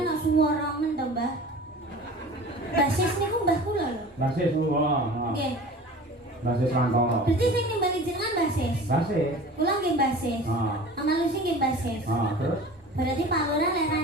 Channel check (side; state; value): both; normal; correlation 0.40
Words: nak suara men to, Mbah. Basis niku mbah kula lho. Mbah Sis ngono. Nggih. Mbah Sis Rantoro. Berarti sing nimbali jenengan basis. Mbah Sis. Kula nggih basis. Ah. Mama Lucy nggih basis. Terus Berarti Pak Lurah lek